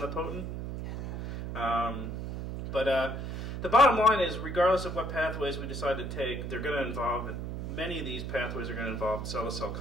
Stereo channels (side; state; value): right; noise; hum, 5 dB below the sound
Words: But the bottom line is, regardless of what pathways we decide to take, they're going to involve, many of these pathways are going to involve cell-to-cell